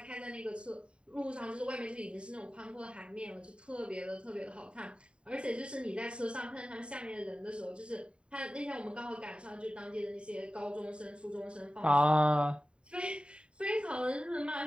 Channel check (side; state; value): left; late; 0.054 ms